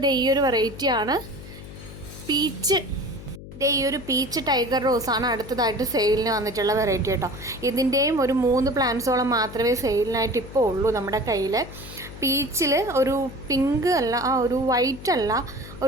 ഈ ഒരു വെറൈറ്റിയാണ്. പീച്ച്. ഈ ഒരു പീച്ച് ടൈഗർ റോസാണ് അടുത്തതായിട്ട് സെയിലിന് വന്നിട്ടുള്ള വെറൈറ്റി കേട്ടോ. ഇതിൻ്റെയും ഒരു 3 പ്ലാന്റ്സോളം മാത്രമേ സെയിലിനായിട്ട് ഇപ്പോൾ ഉള്ളൂ നമ്മുടെ കയ്യിൽ. പീച്ചിൽ ഒരു പിങ്ക് അല്ല, ഒരു വൈറ്റ് അല്ല,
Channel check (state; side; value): noise; left; hum, 14 dB below the sound